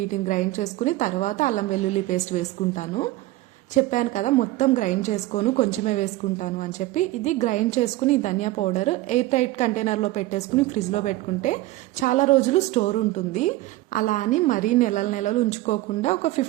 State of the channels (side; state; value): left; quieter; 17.6 dB